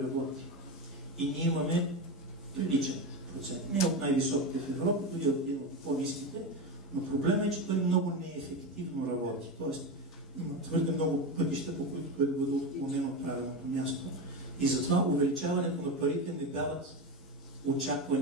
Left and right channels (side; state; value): both; normal; correlation 0.18